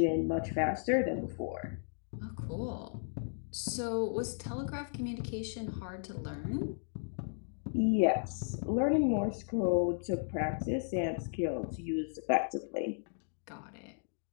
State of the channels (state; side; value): silent; right; digital silence